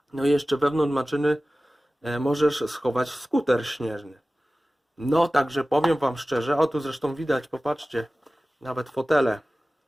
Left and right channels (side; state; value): both; normal; correlation 0.97